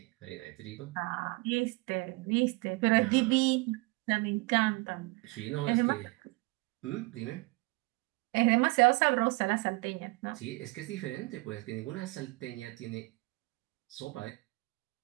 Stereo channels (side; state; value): left; quieter; 25.6 dB